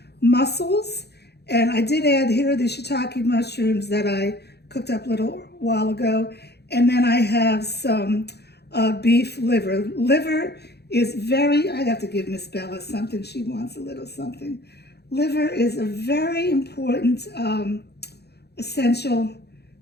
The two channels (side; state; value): right; late; 0.48 ms